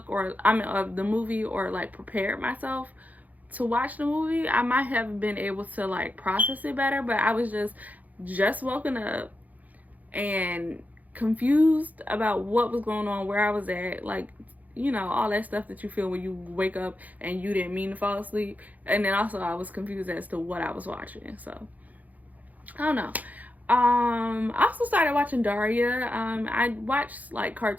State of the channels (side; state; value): left; late; 0.079 ms